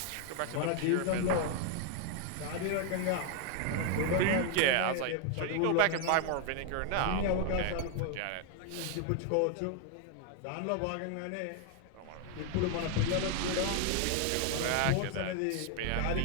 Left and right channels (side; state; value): both; different; correlation 0.00